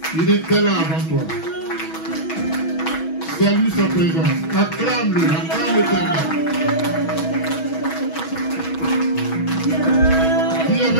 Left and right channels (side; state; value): right; late; 6.2 ms